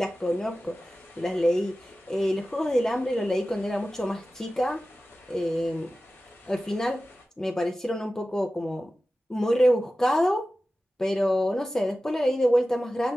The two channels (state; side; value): normal; both; correlation 0.95